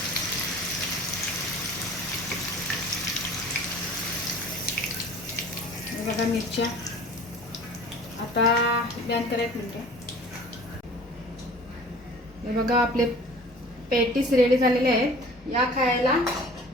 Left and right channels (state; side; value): normal; both; correlation 0.45